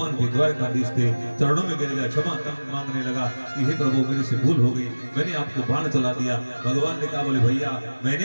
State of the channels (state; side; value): inverted; both; correlation -1.00